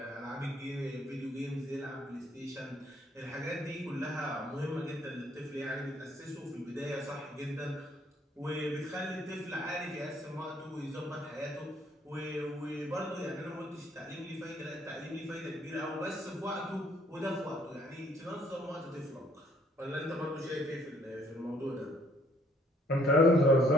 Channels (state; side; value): normal; both; correlation 0.64